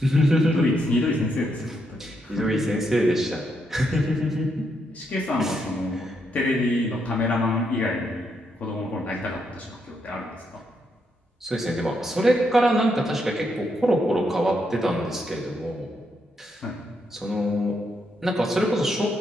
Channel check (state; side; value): normal; both; correlation 0.79